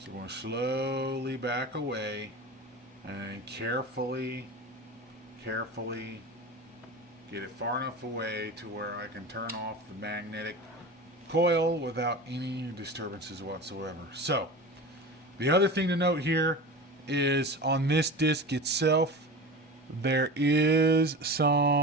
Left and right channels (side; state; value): both; normal; correlation 0.31